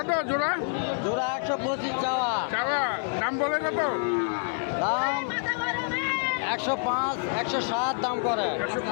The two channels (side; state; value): right; silent; 56 dB below the other